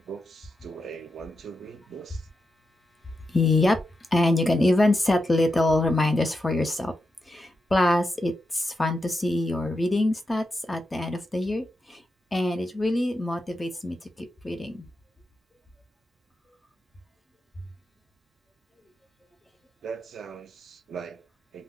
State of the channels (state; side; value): normal; both; correlation 0.87